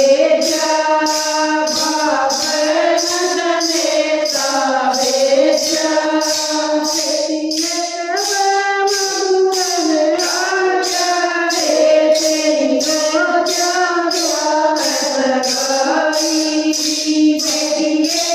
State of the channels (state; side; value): identical; both; correlation 1.00